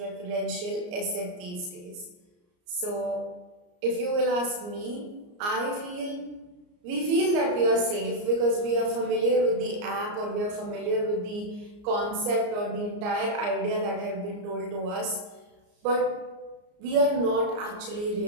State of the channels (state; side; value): late; left; 34 ms